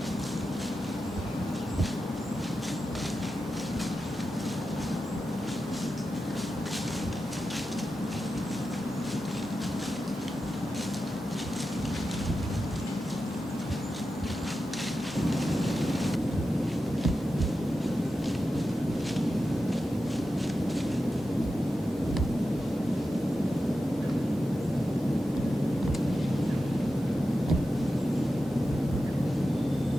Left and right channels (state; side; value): normal; both; correlation 0.91